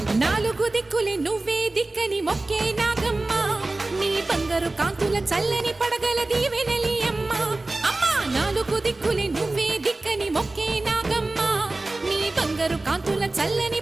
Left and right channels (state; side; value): quieter; left; 3.0 dB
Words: నాలుగు దిక్కులే నువ్వే దిక్కని మొక్కే నాగమ్మ నీ బంగారు కాంతుల చల్లని పడగల దీవెనలి అమ్మ అమ్మా నాలుగు దిక్కులే నువ్వే దిక్కని మొక్కే నాగమ్మ నీ బంగారు కాంతుల చల్లని